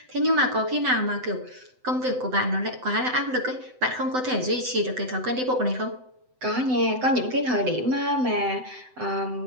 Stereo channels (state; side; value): late; left; 7.9 ms